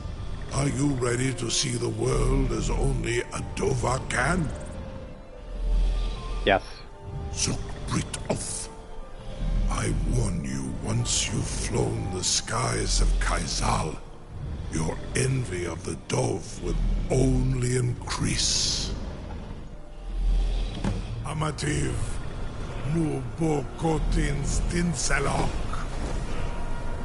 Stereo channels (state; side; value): identical; both; correlation 1.00